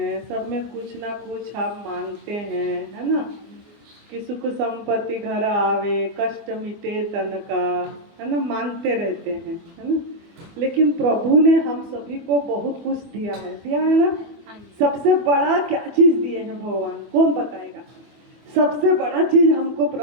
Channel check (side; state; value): left; late; 24 ms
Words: सब में कुछ ना कुछ हम मांगते हैं, है ना। कि सुख संपत्ति घर आवे, कष्ट मिटे तन का, है ना, मांगते रहते हैं, है ना। लेकिन प्रभु ने हम सभी को बहुत कुछ दिया है ना। सबसे बड़ा क्या चीज दिए हैं भगवान, कौन बताएगा? सबसे बड़ा चीज हमको